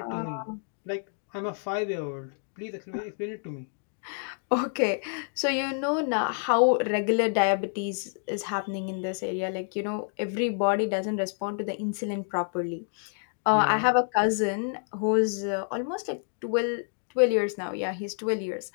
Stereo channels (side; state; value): right; silent; 59 dB below the other